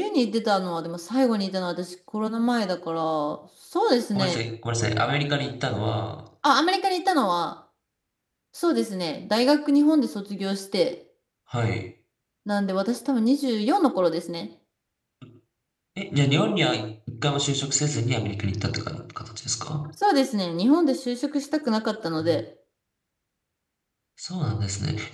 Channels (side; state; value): both; identical; correlation 1.00